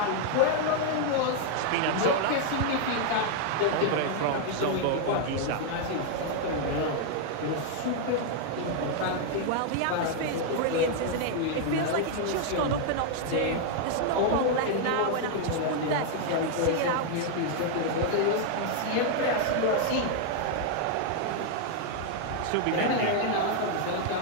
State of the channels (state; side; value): different; both; correlation 0.00